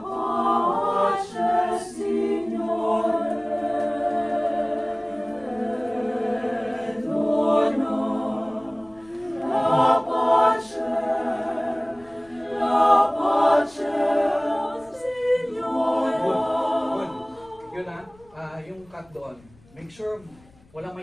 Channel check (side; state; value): left; noise; rumble, 28 dB below the sound